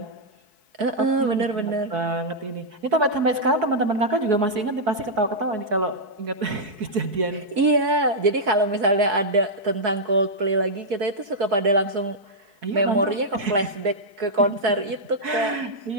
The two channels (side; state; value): left; late; 4.6 ms